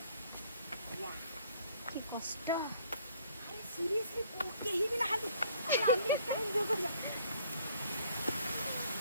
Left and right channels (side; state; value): both; inverted; correlation -0.61